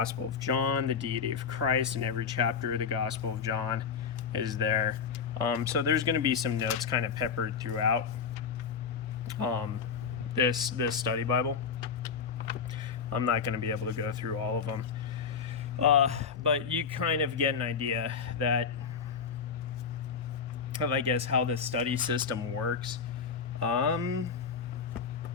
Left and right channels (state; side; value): quieter; right; 6.1 dB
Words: of John, the deity of Christ, in every chapter of the Gospel of John is there. So there's going to be some notes kind of peppered throughout this study Bible. I'm not going to be able to go through all of them. But you kind of get an idea of, I guess, how the study system works. And